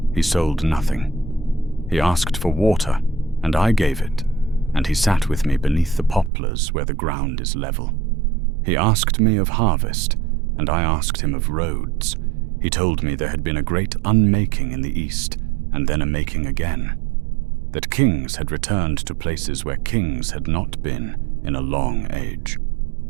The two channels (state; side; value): drops out; left; at 6.3 s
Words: He sold nothing. He asked for water, and I gave it, and he sat with me beneath the poplars where the ground is level. He asked me of harvest, and I asked him of roads. He told me there had been a great unmaking in the east, and then a making again, that kings had returned to places where kings had not been in a long age,